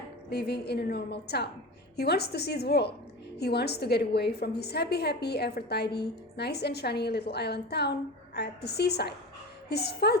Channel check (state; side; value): normal; both; correlation 0.29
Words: living in a normal town. He wants to see the world. He wants to get away from his happy, ever tidy, nice and shiny little island town at the seaside. His